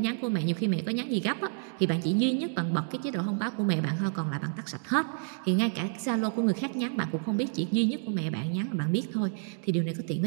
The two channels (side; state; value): left; silent; 58 dB below the other